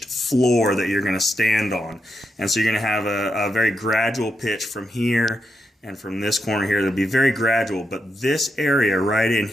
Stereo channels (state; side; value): normal; both; correlation 0.84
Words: floor that you're going to stand on. And so you're going to have a very gradual pitch from here and from this corner here. It'll be very gradual, but this area right in